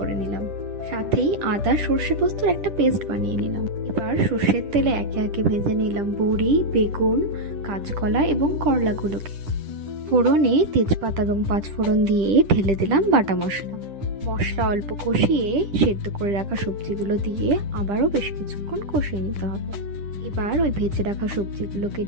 নিলাম। সাথেই আদা সর্ষে পোস্তর একটা পেস্ট বানিয়ে নিলাম। এবার সর্ষের তেলে একে একে ভেজে নিলাম বড়ি, বেগুন, কাঁচকলা এবং করলাগুলোকে। ফোড়নে তেজপাতা এবং 5 ফোড়ন দিয়ে ঢেলে দিলাম বাটা মশলা। মশলা অল্প কষিয়ে সেদ্ধ করে রাখা সবজিগুলো দিয়ে আবারও বেশ কিছুক্ষণ কষিয়ে নিতে হবে। এবার ওই ভেজে রাখা সবজিগুলোকে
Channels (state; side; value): late; left; 10 ms